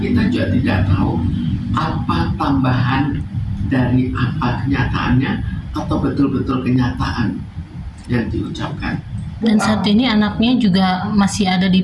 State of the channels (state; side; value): identical; both; correlation 1.00